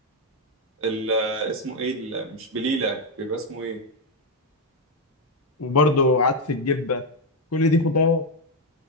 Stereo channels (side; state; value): both; normal; correlation 0.04